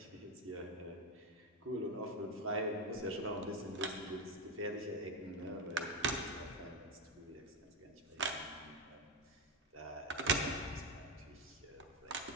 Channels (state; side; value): normal; both; correlation 0.10